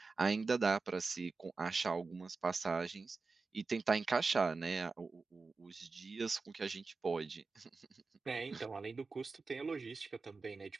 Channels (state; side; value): quieter; left; 4.2 dB